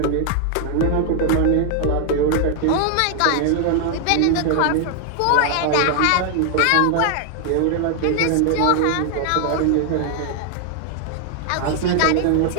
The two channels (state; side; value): different; both; correlation 0.00